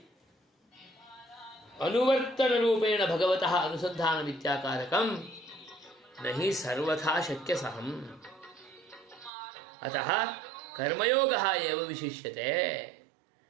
अनुवर्तन रूपेण भगवतः अनुसंधान विद्याकारकम नहीं सर्वथा शक्य सहम। अतः कर्मयोगः एव विशिष्यते।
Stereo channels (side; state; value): left; drops out; at 9.3 s